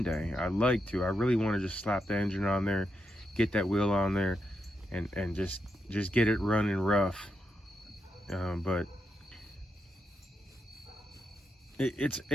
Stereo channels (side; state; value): both; normal; correlation 0.83